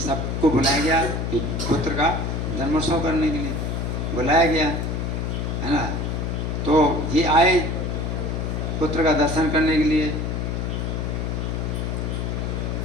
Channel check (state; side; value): noise; left; hum, 1 dB below the sound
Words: बुलाया गया कि पुत्र का जन्मोत्सव करने के लिए बुलाया गया, है ना। तो ये आए पुत्र का दर्शन करने के लिए।